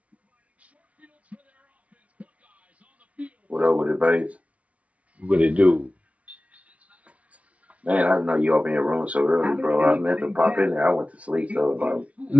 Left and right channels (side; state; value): left; late; 0.066 ms